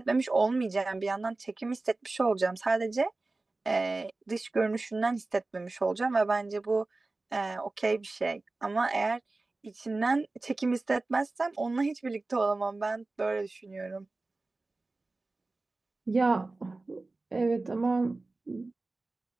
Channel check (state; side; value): quieter; left; 3.3 dB